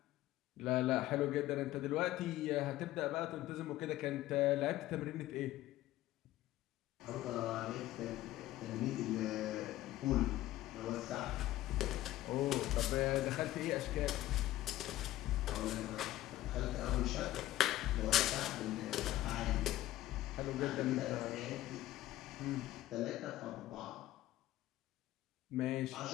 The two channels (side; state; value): right; quieter; 15.1 dB